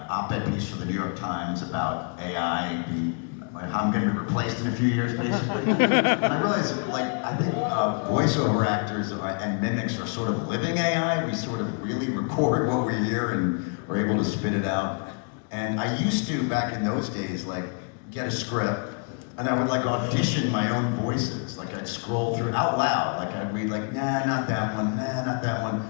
op-ed piece for the New York Times about AI being, how I'm going to be replaced in a few years, basically. And I realize, I think voiceover actors and mimics are sort of living AI. We sort of really record what we hear and are able to spit it out. And I used to, back in those days, get a script, and I would audition my own voices. I'd scroll through out loud. I'd read nah, not that one, nah, not that one.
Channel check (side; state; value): right; quieter; 39.8 dB